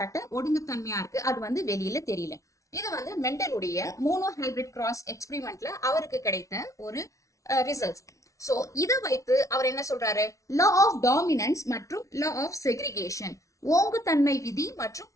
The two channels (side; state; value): right; late; 0.15 ms